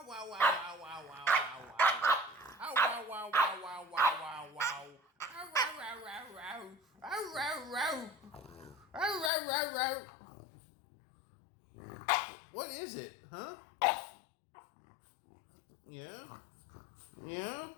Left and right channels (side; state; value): right; drops out; at 9.3 s